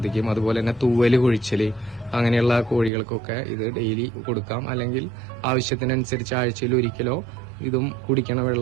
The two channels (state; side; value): drops out; left; at 2.9 s